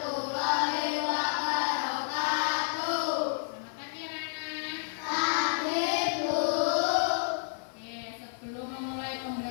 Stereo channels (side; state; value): right; silent; digital silence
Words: wabarakatuh. Selamat pagi anak-anak. Pagi, Bu. Oke, sebelum memulai